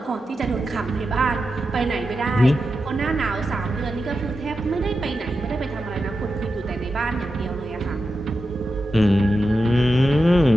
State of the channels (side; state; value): both; normal; correlation 0.90